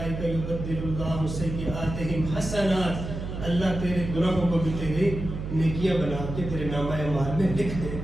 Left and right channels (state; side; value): noise; right; hum, 6 dB below the sound